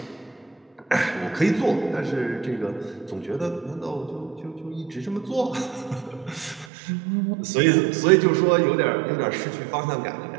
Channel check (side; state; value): left; drops out; at 6.7 s